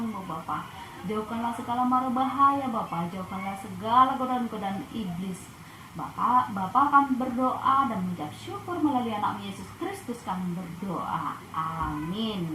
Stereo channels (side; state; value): both; identical; correlation 1.00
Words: Bapa. Jauhkanlah segala mara bahaya Bapa, jauhkanlah segala godaan-godaan iblis. Bapa kami berdoa dan mengucap syukur melalui anak Yesus Kristus kami berdoa.